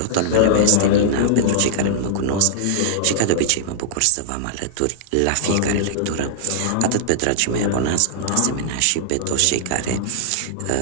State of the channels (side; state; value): both; different; correlation -0.01